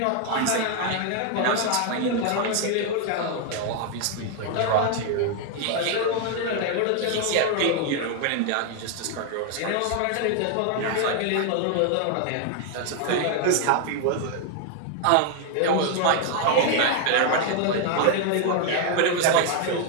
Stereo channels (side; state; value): both; different; correlation 0.00